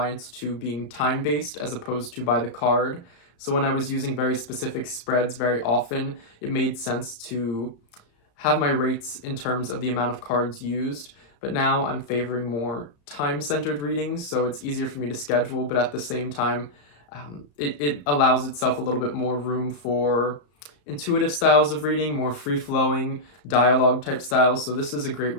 to being time-based as opposed to by the card. So when I was using very specific spreads very often, it made sense to have my rates in terms of the amount of cards used, but now I'm favoring more time-centered readings, so it's easier for me to schedule, but at the same time, it allows itself a little bit more room for intuitive styles of reading, more free-flowing dialogue type styles. So this is a great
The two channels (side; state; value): right; late; 34 ms